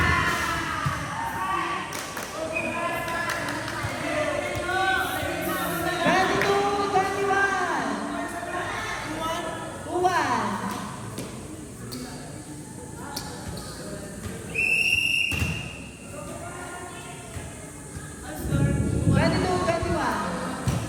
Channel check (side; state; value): both; identical; correlation 1.00